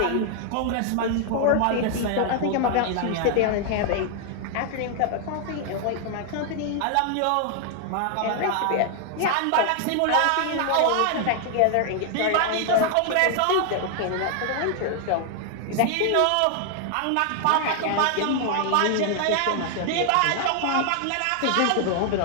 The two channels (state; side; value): different; both; correlation 0.00